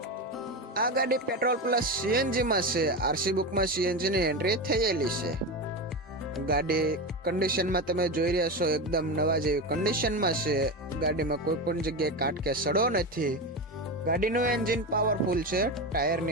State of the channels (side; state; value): both; normal; correlation 0.19